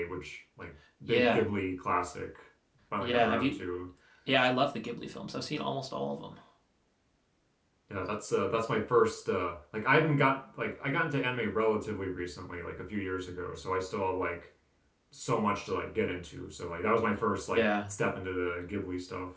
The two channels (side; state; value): both; identical; correlation 1.00